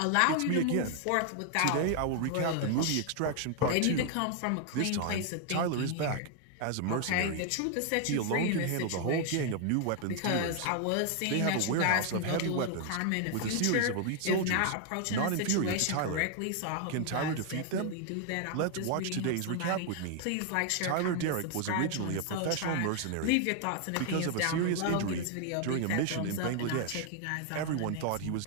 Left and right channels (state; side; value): different; both; correlation 0.00